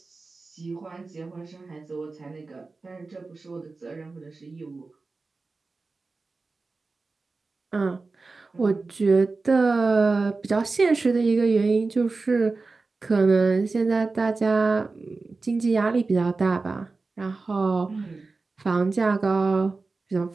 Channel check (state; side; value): quieter; left; 3.8 dB